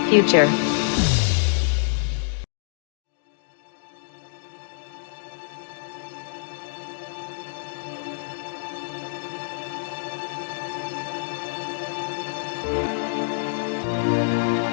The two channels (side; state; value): right; silent; digital silence